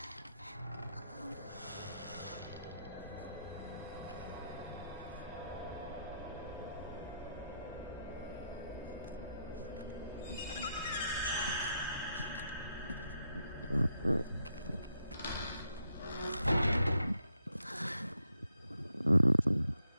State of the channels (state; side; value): inverted; both; correlation -0.79